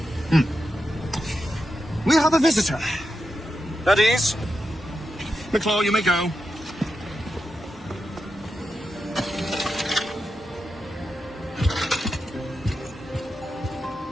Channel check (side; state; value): both; normal; correlation 0.88